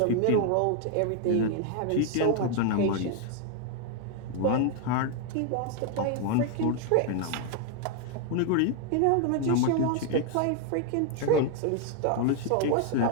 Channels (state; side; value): different; both; correlation 0.00